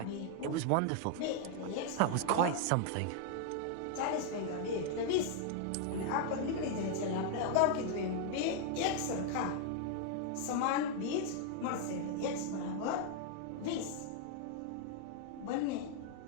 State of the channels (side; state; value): both; different; correlation 0.00